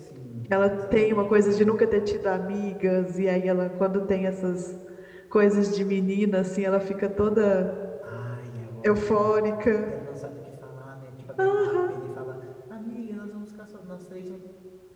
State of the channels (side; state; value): both; identical; correlation 1.00